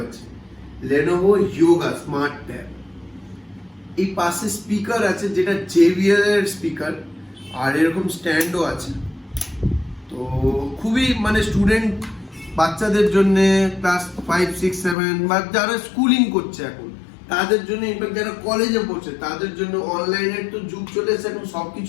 আছে, Lenovo Yoga Smart Tab। এই পাশে স্পিকার আছে, যেটা JBL এর স্পিকার, আর এরকম স্ট্যান্ডও আছে। তো খুবই মানে স্টুডেন্ট বাচ্চাদের জন্য, ক্লাস 5, 6, 7 বা যারা স্কুলিং করছে এখন তাদের জন্য, ইনফ্যাক্ট যারা কলেজে পড়ছে তাদের জন্য, অনলাইনের তো যুগ চলে এসেছে এখন,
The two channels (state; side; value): drops out; right; at 15.0 s